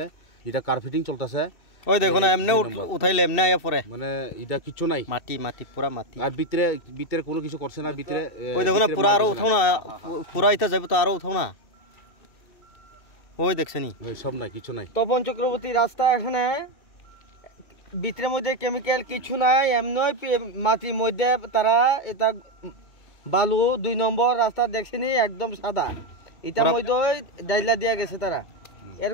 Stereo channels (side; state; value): right; late; 2.7 ms